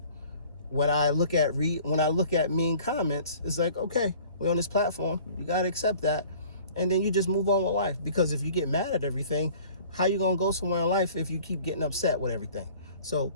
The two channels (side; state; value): both; inverted; correlation -0.49